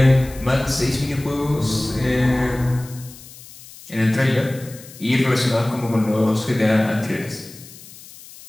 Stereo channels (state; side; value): noise; left; hiss, 19 dB below the sound